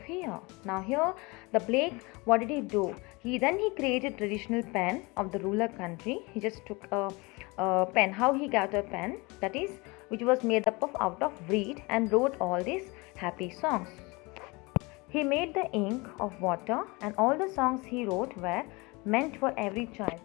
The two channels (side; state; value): right; quieter; 25.8 dB